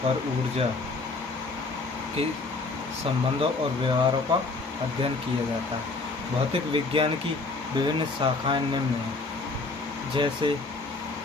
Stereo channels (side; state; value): right; quieter; 3.7 dB